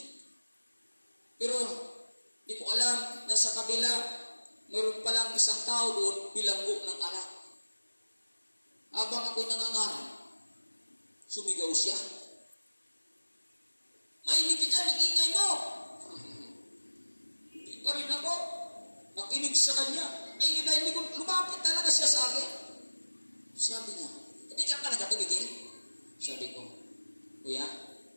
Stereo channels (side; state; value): both; inverted; correlation -1.00